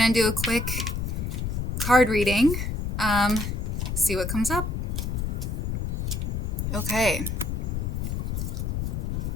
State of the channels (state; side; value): noise; left; rumble, 1 dB below the sound